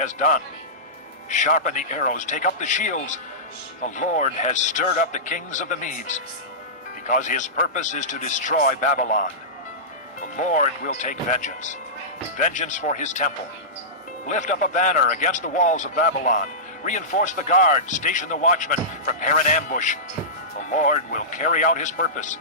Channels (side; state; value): both; normal; correlation -0.18